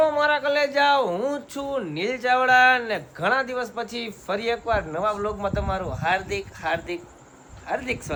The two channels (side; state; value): both; identical; correlation 1.00